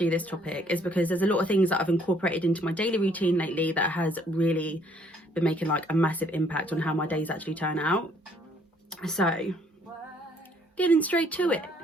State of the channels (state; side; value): normal; both; correlation 0.64